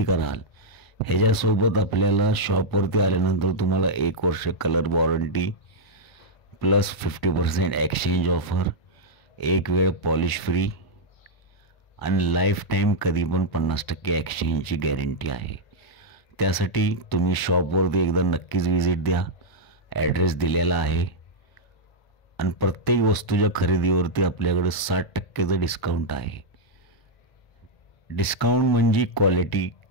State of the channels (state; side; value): late; right; 1.0 ms